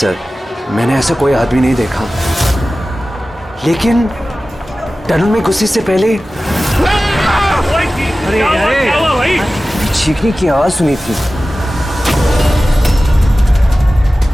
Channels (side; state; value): both; normal; correlation 0.96